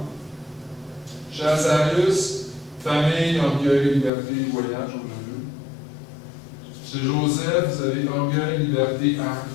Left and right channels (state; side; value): drops out; right; at 4.1 s